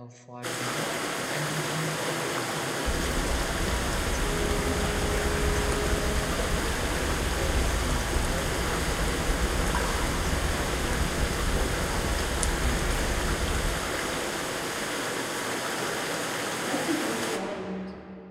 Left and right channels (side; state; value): both; identical; correlation 1.00